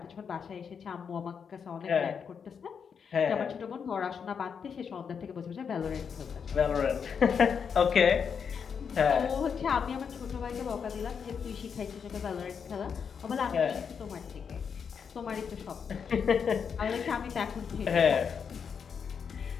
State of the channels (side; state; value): right; quieter; 6.7 dB